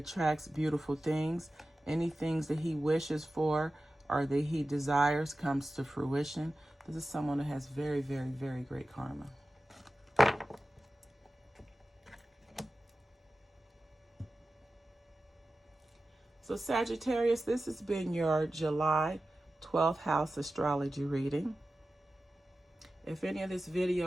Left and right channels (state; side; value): normal; both; correlation 0.94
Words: beautiful things. Any things that he wishes for or that he desires comes to fruition. This is someone that has very, very, very great karma. So Sagittarius, this has been your July 12th house astrology reading. If any of this